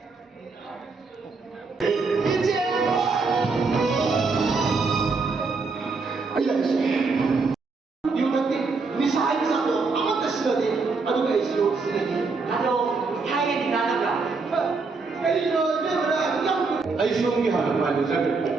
Aisiomgi hana palu jaga.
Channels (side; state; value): left; quieter; 4.2 dB